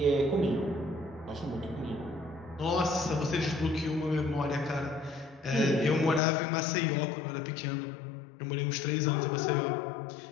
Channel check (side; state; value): right; drops out; at 6.2 s